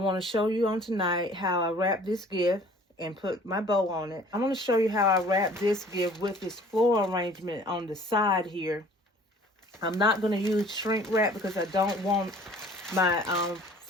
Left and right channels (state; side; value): normal; both; correlation 0.51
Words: to show you on tonight how I wrapped this gift and put my bow on it. I want to show you how I wrapped this gift with this floral arrangement on the side here. I'm not going to use shrink wrap because I don't want my